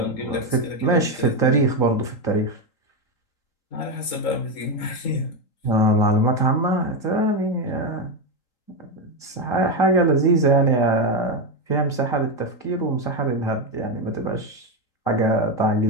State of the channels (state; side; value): late; right; 3.8 ms